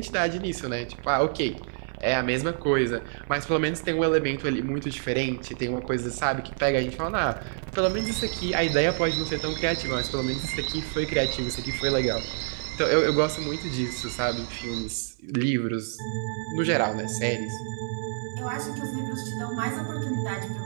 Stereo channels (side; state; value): left; silent; 55 dB below the other